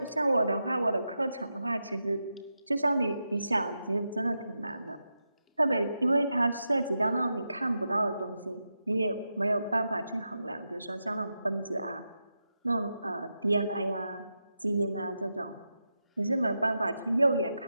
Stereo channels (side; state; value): both; inverted; correlation -0.88